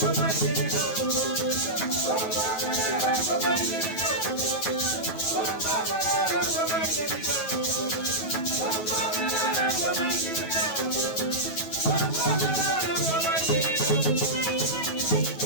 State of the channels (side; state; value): right; late; 9.2 ms